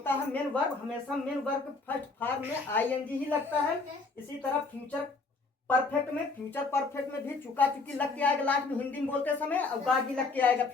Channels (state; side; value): quieter; right; 3.9 dB